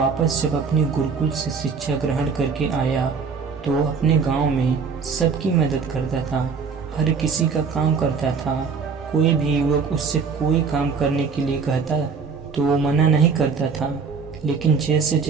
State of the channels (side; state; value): left; quieter; 5.4 dB